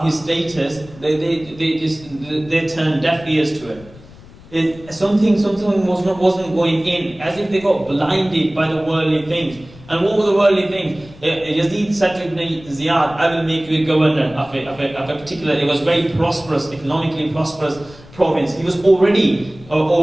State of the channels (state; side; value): noise; left; rumble, 21 dB below the sound